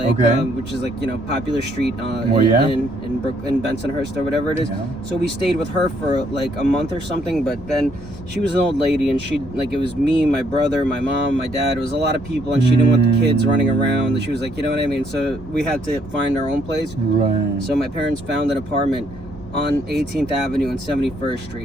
which is like, you know, popular street in Bensonhurst or whatever it is. Yeah. So we stayed with her for like a month or something, but then she was an old lady and it was me, my brother, my mom, my dad. It was a lot of people and she didn't want the kids running around. She was like, you know what I mean? So we had to find our own place. Right. So my parents found an apartment on 18th Avenue and 71st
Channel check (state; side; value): normal; both; correlation 0.69